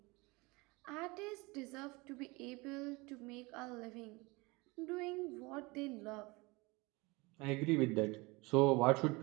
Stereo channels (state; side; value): quieter; left; 24.8 dB